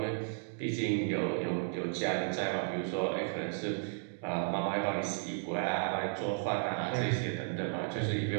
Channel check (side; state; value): left; silent; digital silence